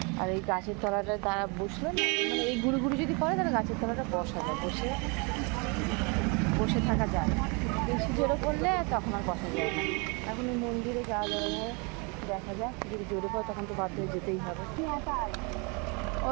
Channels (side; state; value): left; quieter; 31.6 dB